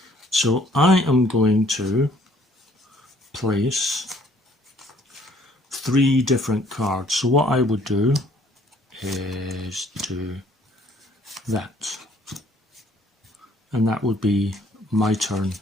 So I am going to place 3 different cards. So what I would do is do that. And that would be my turn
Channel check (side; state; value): both; normal; correlation 0.60